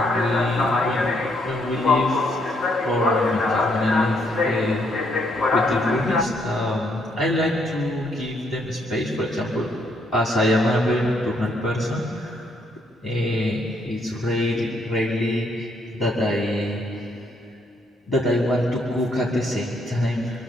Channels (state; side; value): normal; both; correlation 0.72